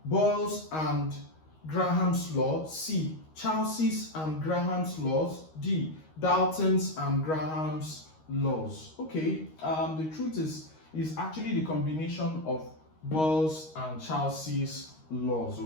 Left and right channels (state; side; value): late; right; 13 ms